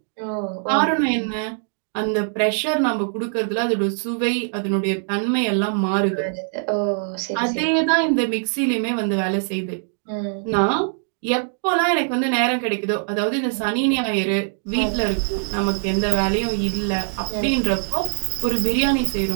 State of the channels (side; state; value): left; silent; 64 dB below the other